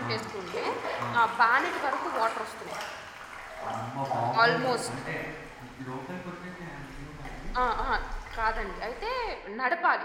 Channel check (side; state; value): both; identical; correlation 1.00